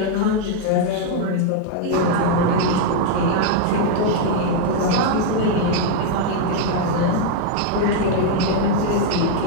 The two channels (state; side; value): different; both; correlation 0.00